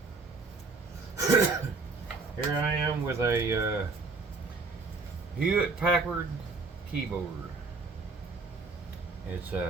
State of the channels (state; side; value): quieter; left; 4.1 dB